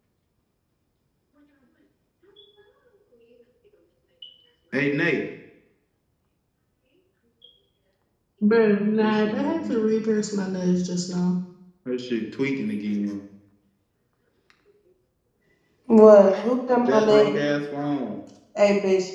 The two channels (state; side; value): identical; both; correlation 1.00